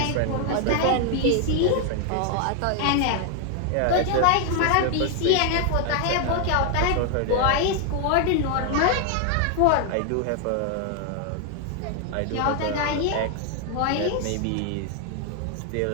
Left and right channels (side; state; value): both; different; correlation 0.00